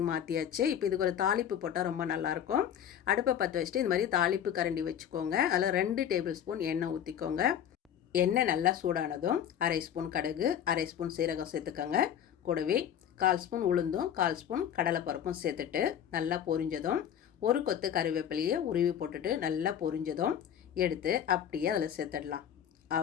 மாற்றியாச்சு. இப்போ இதுக்கு ஒரு தாளிப்பு போட்டால் ரொம்ப நல்லாயிருக்கும். அடுப்பை பற்ற வச்சுட்டு இந்த மாதிரி தாளிப்பு கரண்டி வச்சுக்கோங்க. அதில் 2 டேபிள் ஸ்பூன் எண்ணெய் ஊற்றிக்கோங்க. எண்ணெய் நல்லா சூடானதும் 1/2 ஸ்பூன் கடுகு, 1/2 ஸ்பூன் சீரகம் சேர்த்துக்கோங்க. கூடவே 1/4 ஸ்பூன் உளுந்தும் 1/4 ஸ்பூன் கடலைப்பருப்பும் சேர்த்துட்டு நல்லா பொரிஞ்சதும் 1 கொத்து கறிவேப்பிலையை உருவி போட்டுட்டு நல்லா பொரிஞ்சதும் எடுத்து அப்படியே அதில் சேர்த்துடலாம்.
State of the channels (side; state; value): right; quieter; 9.5 dB